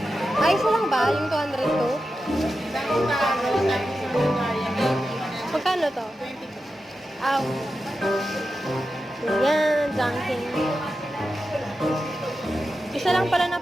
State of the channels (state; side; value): normal; both; correlation 0.91